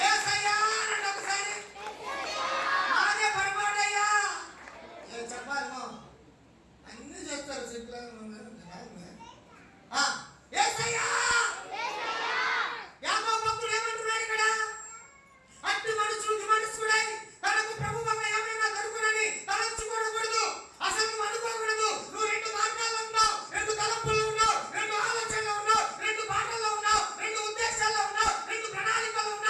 యేసయ్యా అనండి ఒకసారి. మాదే పొరపాటయ్యా చెప్పాలి. అన్ని చెప్తారు సింపుల్. యాకోబు భక్తుడు ఏమంటున్నాడు ఇక్కడ? అట్టి మనుషుడు విమర్శకుడై తనకు ప్రభు వలన ఏమైనా దొరుకునని తలంచుకోకూడదు. అసలు నువ్వు అనుకోకూడదు. నువ్వు రెండు మార్గాల్లో ఉన్నావు, రెండు తలంపుల్లో ఉన్నావు, రెండు ఆలోచనలో ఉన్నావు, రెండు మాటల్లో ఉన్నావు, రెండు ఉద్దేశాల్లో ఉన్నావు, రెండు ప్రణాళికల్లో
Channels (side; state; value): both; identical; correlation 1.00